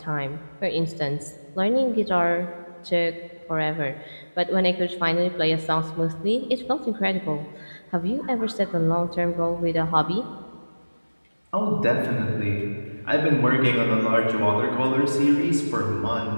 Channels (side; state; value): both; inverted; correlation -1.00